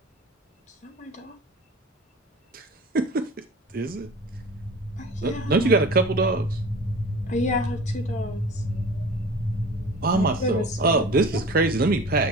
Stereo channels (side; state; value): both; normal; correlation 0.39